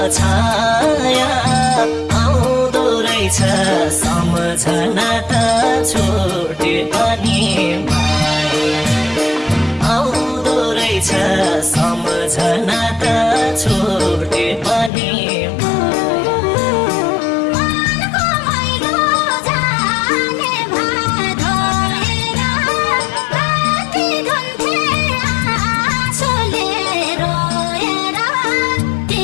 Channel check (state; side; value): drops out; right; at 14.9 s